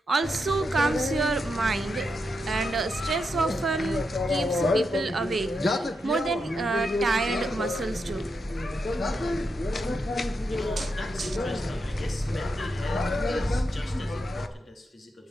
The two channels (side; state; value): both; normal; correlation 0.84